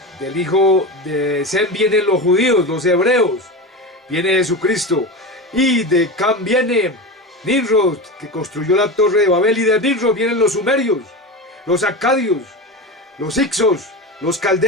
del hijo de Sem vienen los judíos, los hebreos, viene Jesucristo. Y de Can viene Nimrod, que construyó la torre de Babel, y de Nimrod vienen los sumerios, los acadios, los hicsos, los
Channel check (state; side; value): normal; both; correlation 0.24